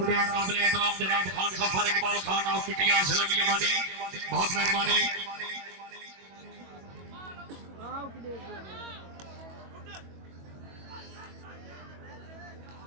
हैं काबिल एहतराम जनाब खान सफर इकबाल खान ऑफ पिटिया सलमिया वाली, बहुत मेहरबानी।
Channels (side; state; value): left; late; 22 ms